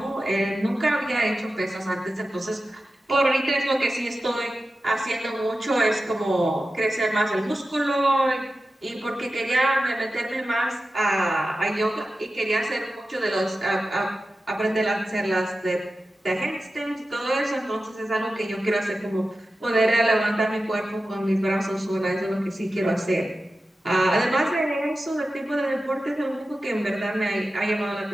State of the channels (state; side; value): normal; both; correlation 0.93